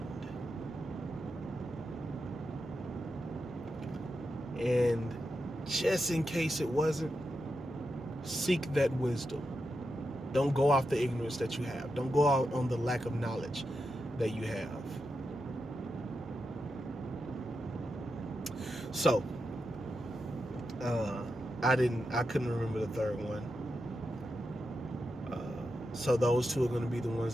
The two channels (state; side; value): normal; both; correlation 0.87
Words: And just in case it wasn't, seek that wisdom. Don't go off the ignorance that you have. Don't go out on the lack of knowledge that you have. So, I couldn't remember the third one. So those two are going to be the